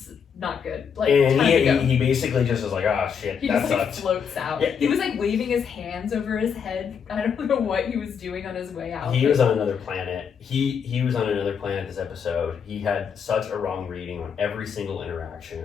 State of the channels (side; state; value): right; quieter; 7.0 dB